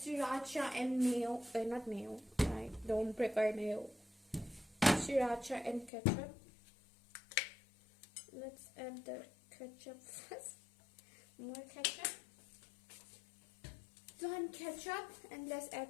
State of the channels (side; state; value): right; drops out; at 5.9 s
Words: and mayo. Not mayo. I don't prepare mayo. Sriracha and ketchup. Let's add the ketchup first. More ketchup. Done ketchup, and let's